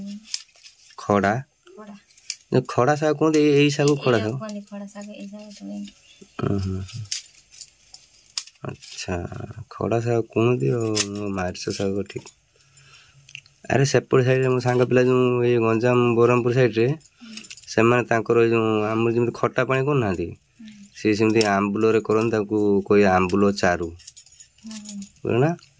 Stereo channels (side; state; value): both; identical; correlation 1.00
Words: खड़ा खड़ा साग कौन यही साग खड़ा साग अच्छा खड़ा साग कौन मार्च साग ठीक अरे सेपट साइड मो सांग पिला जो ये गंजाम ब्रह्मपुर साइड रे से जो आम जमी खटा पानी करना सी सेमती आंबुल करन कोई आंबुल चारू बुझना